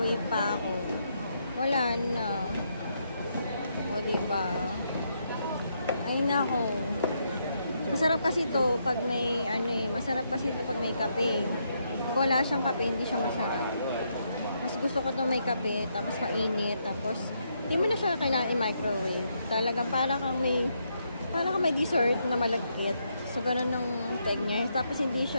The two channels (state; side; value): inverted; both; correlation -0.78